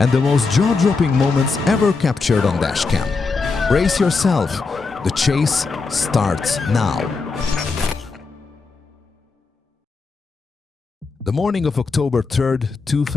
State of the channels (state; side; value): quieter; right; 4.3 dB